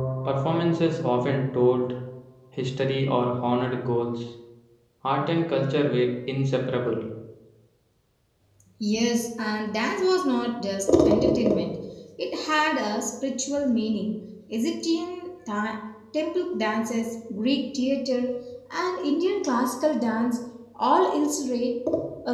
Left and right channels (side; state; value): both; identical; correlation 1.00